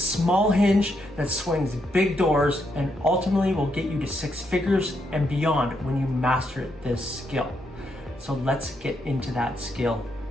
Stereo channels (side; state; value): both; normal; correlation 0.79